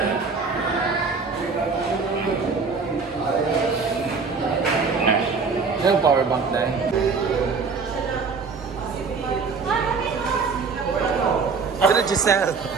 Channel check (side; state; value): left; quieter; 4.9 dB